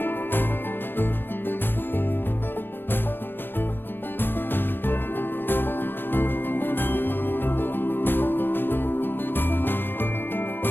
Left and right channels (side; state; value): right; late; 0.096 ms